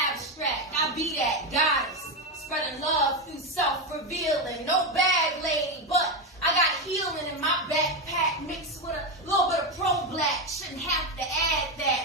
abstract. I be that goddess. Spreading love through self-revealing. No bag lady, but I got healing in my backpack mixed with a little bit of pro-black. Shouldn't have to add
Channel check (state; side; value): normal; both; correlation 0.10